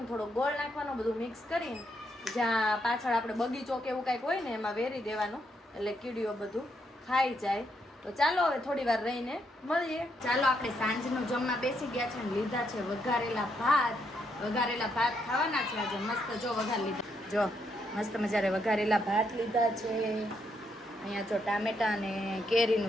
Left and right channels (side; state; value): both; normal; correlation 0.77